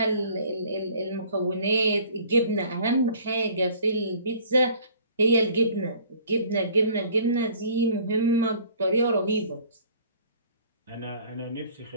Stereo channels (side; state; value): both; inverted; correlation -0.52